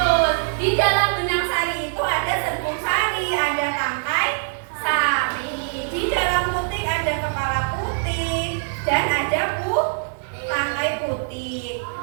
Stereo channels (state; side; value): silent; left; digital silence